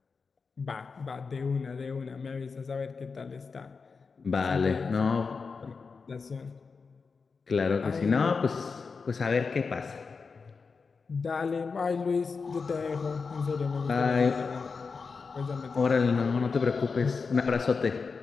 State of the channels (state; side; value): quieter; right; 4.9 dB